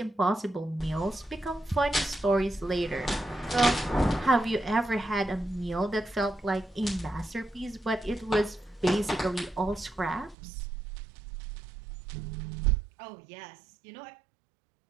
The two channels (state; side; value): drops out; left; at 10.4 s